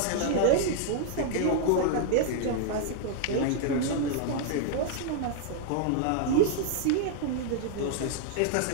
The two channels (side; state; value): both; different; correlation -0.01